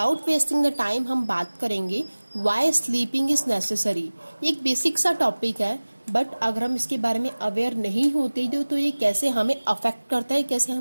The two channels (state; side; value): inverted; both; correlation -1.00